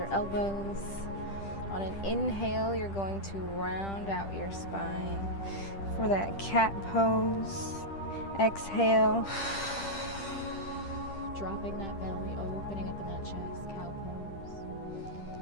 elbows. On an inhale, you're going to round out your spine for that cat pose. Exhale. Dropping that belly, opening up in that chest, cow pose.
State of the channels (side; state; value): right; late; 10 ms